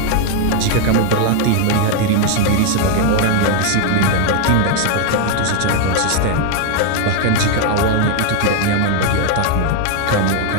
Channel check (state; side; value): different; both; correlation 0.01